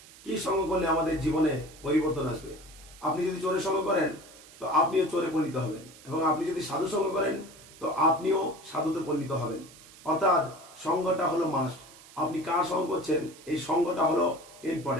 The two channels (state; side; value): noise; right; hiss, 21 dB below the sound